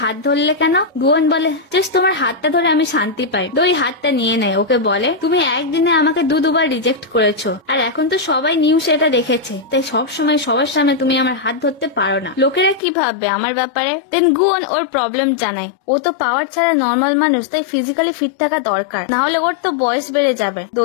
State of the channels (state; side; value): drops out; right; at 12.8 s